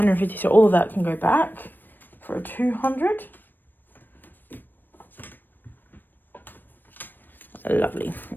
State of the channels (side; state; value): right; late; 0.092 ms